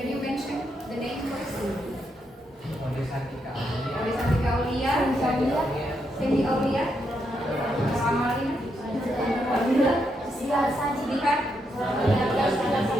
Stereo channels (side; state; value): both; normal; correlation 0.80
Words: you mention the name first? Oleh Santika Oleh Santika Aulia, Cindy Aulia, Amalina, Sidikat,